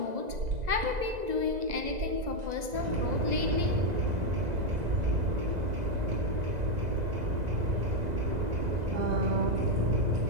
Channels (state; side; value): late; left; 2.0 ms